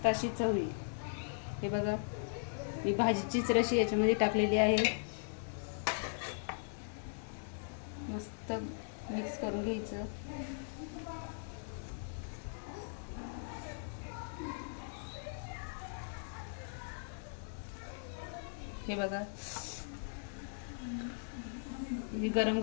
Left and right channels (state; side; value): silent; right; 52 dB below the other